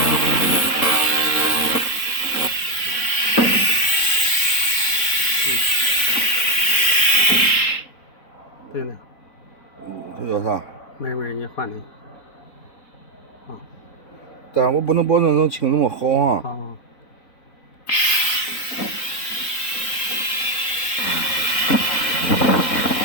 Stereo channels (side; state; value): right; late; 4.0 ms